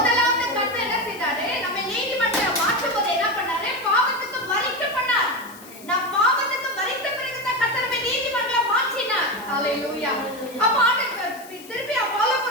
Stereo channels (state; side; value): noise; left; hiss, 20 dB below the sound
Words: கர்த்தர் என்ன செய்தாரு? நம்ம நீதிமன்றம் மாற்றும் போது என்ன பண்ணாரு? பாவத்துக்கு மரிக்க பண்ணார். நான் பாவத்துக்கு மரித்த பிறகு தான் கர்த்தர் நம்ம நீதிமன்றம் மாற்றினார். ஹalleluya. அப்ப ஆண்டவர் திருப்பி